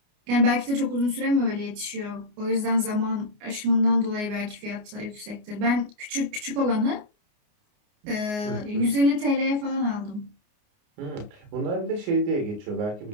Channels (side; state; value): left; late; 29 ms